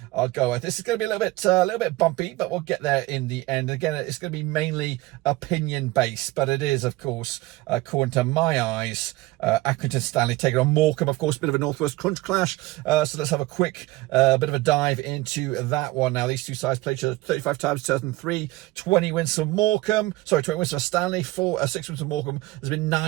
go. This is going to be a little bit bumpy, but we'll get there in the end. Again, it's going to be mainly opinion based, but it is, of course, according to my eyes, Accrington Stanley taking on Morecambe. Of course, a bit of a Northwest crunch clash. So let's have a quick bit of a dive into that one. Now, these two sides played each other 35 times, 2003, 20 wins for Morecambe. Sorry, 20 wins for Stanley, 6 wins for Morecambe. There's been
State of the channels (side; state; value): left; quieter; 19.6 dB